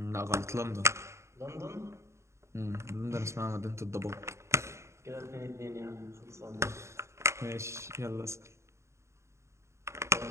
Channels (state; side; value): late; left; 0.14 ms